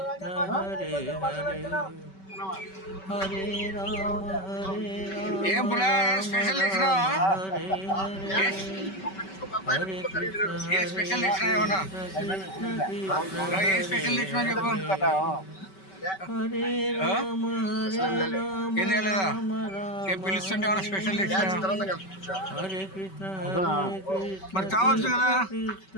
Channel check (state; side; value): late; right; 5.2 ms